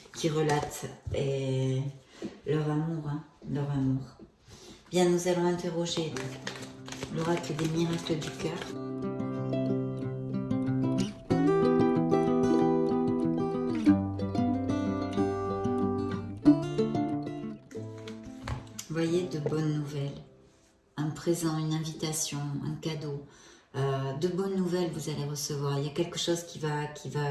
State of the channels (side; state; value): both; identical; correlation 1.00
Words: qui relatent leur amour, hein, leur amour. Bien, nous allons interroger l'oracle des miracles du cœur. Voyez, de bonnes nouvelles, un présent, une invitation, un cadeau, de bonnes nouvelles vous allez recevoir. Il y a quelque chose qui